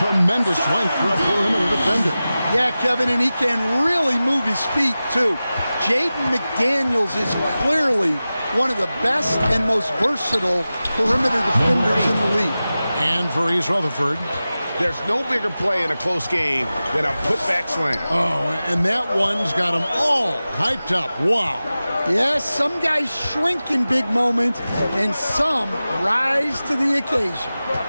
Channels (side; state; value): both; inverted; correlation -0.95